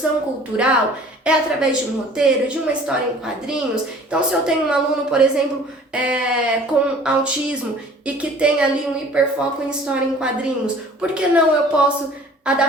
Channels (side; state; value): both; normal; correlation 0.50